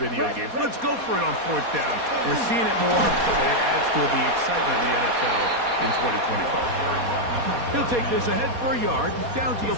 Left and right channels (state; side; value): late; left; 4.2 ms